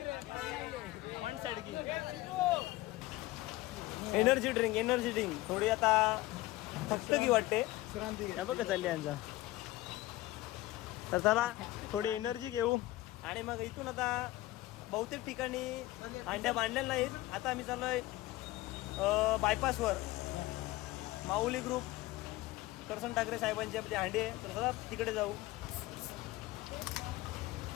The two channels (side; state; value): right; quieter; 18.1 dB